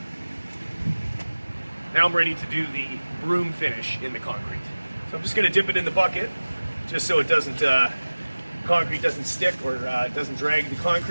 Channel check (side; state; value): both; inverted; correlation -1.00